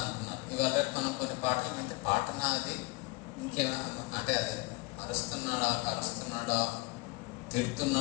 అనుకున్నారు. ఇవాళ మనం కొన్ని పాటలు అంటే పాటనా అది ఇంకేమైనా అంటే అది అరుస్తున్నాడా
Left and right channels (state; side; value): quieter; right; 25.2 dB